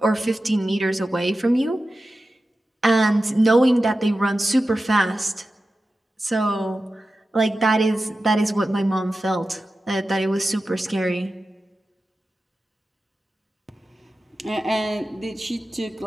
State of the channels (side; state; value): both; normal; correlation 0.93